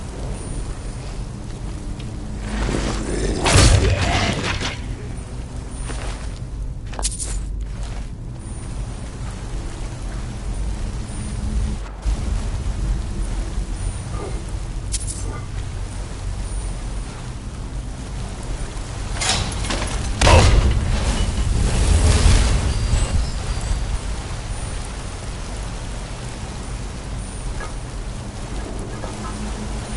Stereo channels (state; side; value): identical; both; correlation 1.00